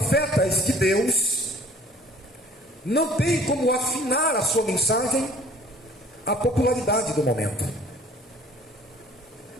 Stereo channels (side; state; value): both; normal; correlation 0.53